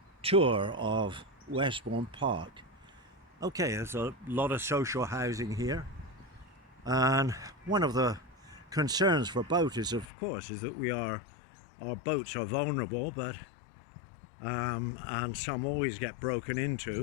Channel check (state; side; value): drops out; right; at 10.1 s